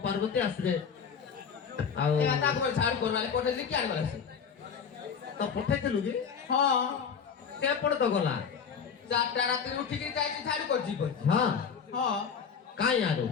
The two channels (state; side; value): quieter; right; 6.6 dB